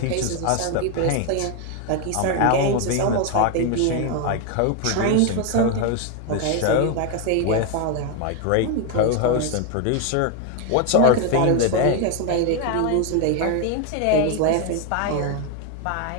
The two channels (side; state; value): both; different; correlation 0.01